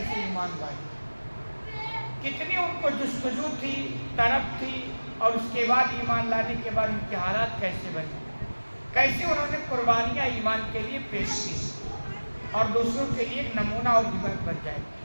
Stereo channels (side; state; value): both; inverted; correlation -1.00